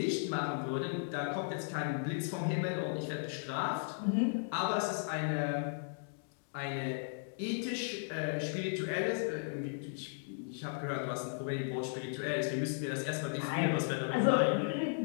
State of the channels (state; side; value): silent; right; digital silence